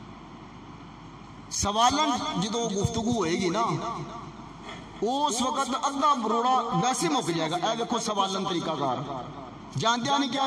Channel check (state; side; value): identical; both; correlation 1.00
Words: سوالن جدو گفتگو ہوئے گی نا، اس وقت ادھا بروڑا ویسے مک جائے گا. اے دیکھو سوالن طریقہ کار، جاندیا نہیں